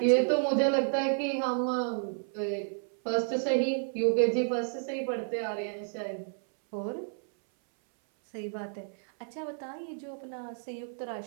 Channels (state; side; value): silent; left; 57 dB below the other